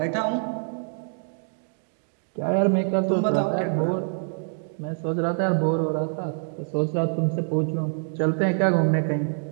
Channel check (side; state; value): left; silent; digital silence